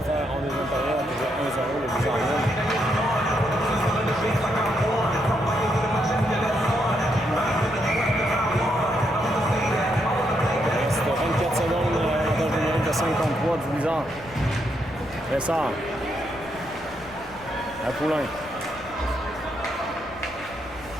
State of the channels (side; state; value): left; noise; rumble, 20 dB below the sound